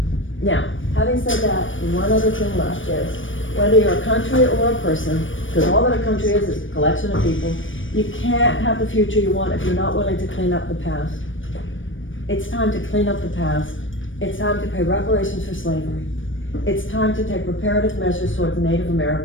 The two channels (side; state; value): right; late; 0.56 ms